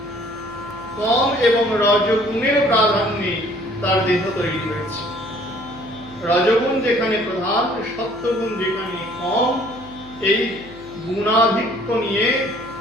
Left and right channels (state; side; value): noise; left; hum, 21 dB below the sound